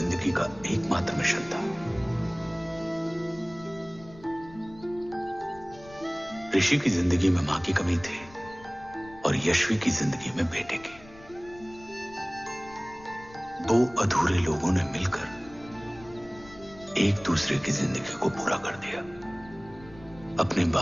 का एकमात्र मिशन था। ऋषि की जिंदगी में मां की कमी थी और यश्वी की जिंदगी में बेटे की। दो अधूरे लोगों ने मिलकर एक दूसरे की जिंदगी को पूरा कर दिया। अपने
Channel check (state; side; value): noise; left; rumble, 21 dB below the sound